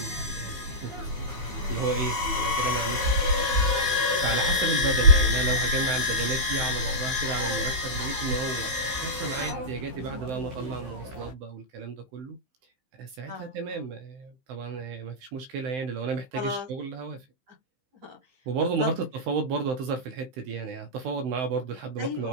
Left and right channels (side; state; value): left; late; 15 ms